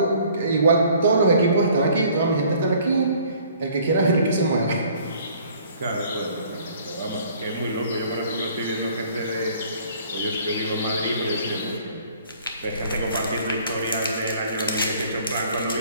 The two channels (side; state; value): both; inverted; correlation -0.56